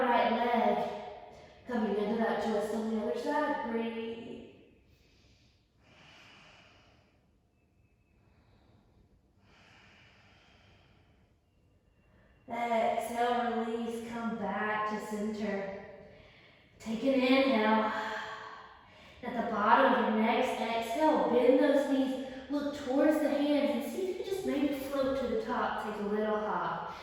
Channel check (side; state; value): both; identical; correlation 1.00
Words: right leg. Coming into that twist on the other side. Breathe. Exhale, release, come back to center. Take an inhale. At the bottom of your next exhale, bend those knees, look towards the hands, and see if you can just maybe float to the top. Take a little hop.